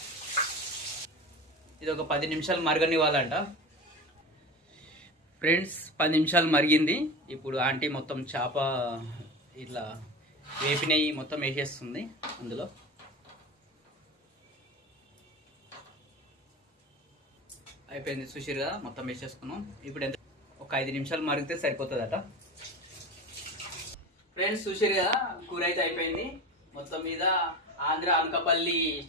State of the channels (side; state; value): both; normal; correlation 0.29